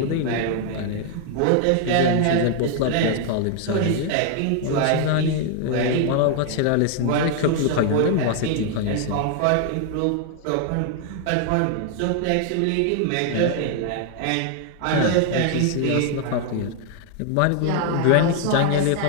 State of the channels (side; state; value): both; different; correlation 0.00